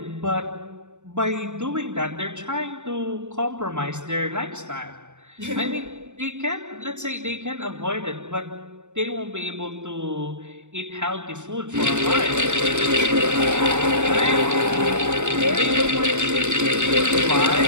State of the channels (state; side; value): late; left; 0.84 ms